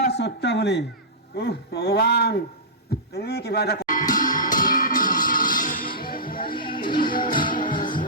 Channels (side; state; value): both; normal; correlation -0.16